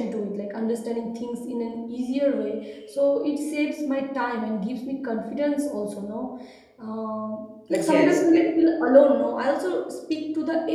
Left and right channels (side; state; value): both; identical; correlation 1.00